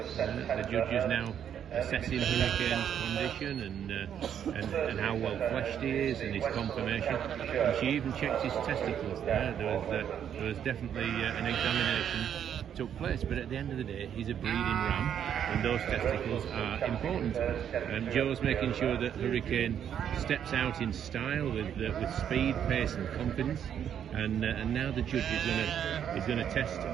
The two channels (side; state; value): left; quieter; 9.0 dB